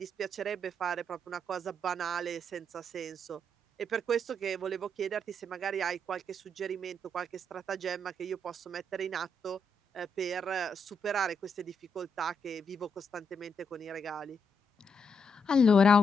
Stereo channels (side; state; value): both; normal; correlation 0.78